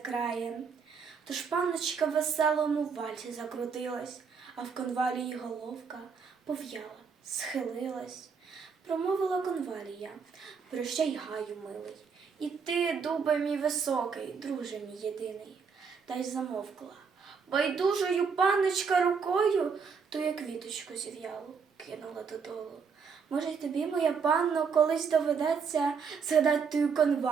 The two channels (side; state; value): left; quieter; 5.8 dB